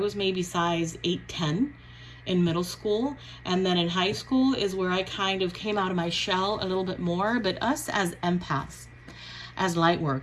maybe size 8'10" in middle school. And then in high school is where I kind of came out of my shell a little bit more. But us as empaths, as light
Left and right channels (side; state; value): both; identical; correlation 1.00